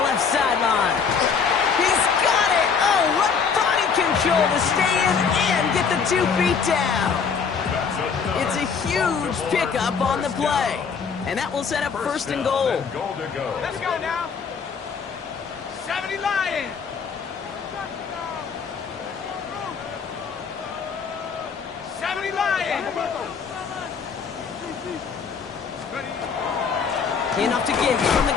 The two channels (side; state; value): right; quieter; 6.0 dB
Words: left sideline. He's got it. Oh, what body control to stay in and get the 2 feet down. It's a huge pickup on the play. And that will set up 1st and goal. Let's go now. 70 Lions. 70 Lions. Enough to give from the